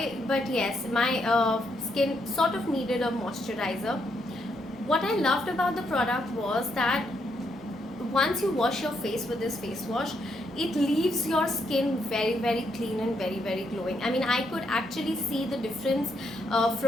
but yes, my skin sort of needed a moisturizer. What I loved about the product was that once you wash your face with this face wash, it leaves your skin very clean and very glowing. I mean, I could actually see the difference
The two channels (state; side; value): normal; both; correlation 0.77